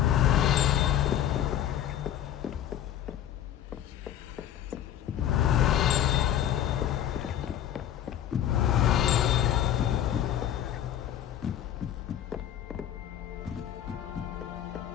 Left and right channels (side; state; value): right; quieter; 10.9 dB